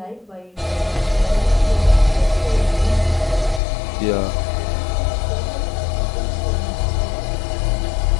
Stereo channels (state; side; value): drops out; right; at 3.6 s